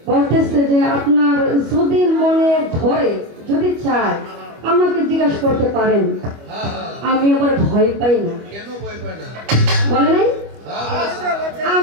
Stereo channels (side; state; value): left; late; 25 ms